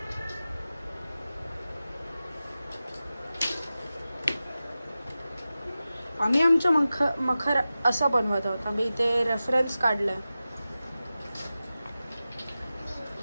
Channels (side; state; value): both; inverted; correlation -0.95